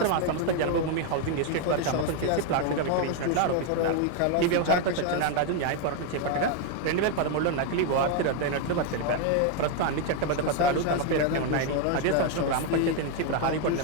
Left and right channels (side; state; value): both; different; correlation 0.01